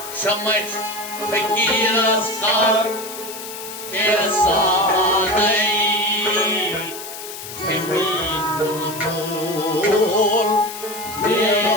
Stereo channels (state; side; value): noise; left; hiss, 11 dB below the sound